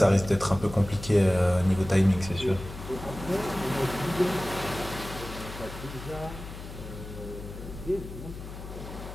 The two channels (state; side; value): noise; left; hum, 11 dB below the sound